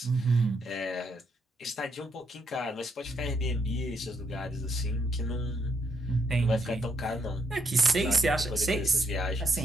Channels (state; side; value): normal; both; correlation 0.76